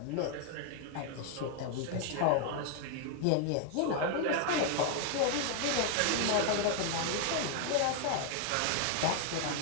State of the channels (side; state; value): both; different; correlation 0.00